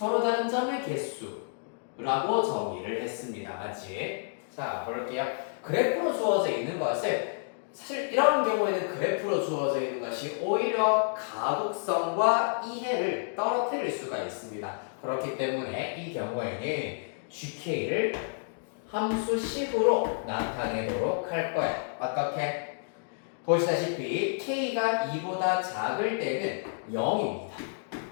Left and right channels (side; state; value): right; silent; digital silence